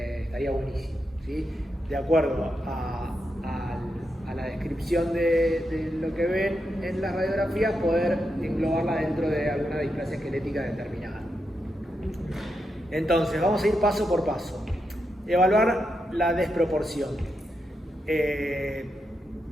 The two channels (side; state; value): both; normal; correlation 0.85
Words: buenísimo, ¿sí? De acuerdo a la descripción de lo que ven en las radiografías, poder englobarla dentro de alguna displasia esquelética determinada. Entonces, vamos a ir paso por paso. Evaluar la desproporción.